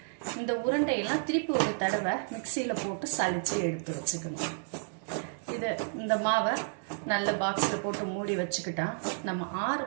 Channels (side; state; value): left; silent; 57 dB below the other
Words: இந்த உருண்டையெல்லாம் திருப்பி ஒரு தடவை மிக்சியில் போட்டு சலிச்சு எடுத்து வச்சுக்கணும். இந்த மாவை நல்ல பாக்ஸில் போட்டு மூடி வச்சுக்கிட்டா நம்ம 6